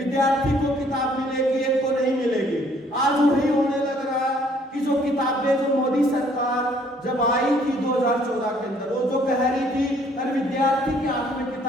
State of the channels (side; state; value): both; normal; correlation 0.62